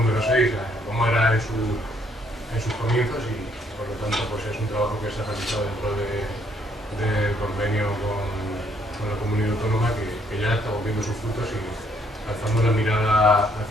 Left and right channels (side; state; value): both; normal; correlation 0.68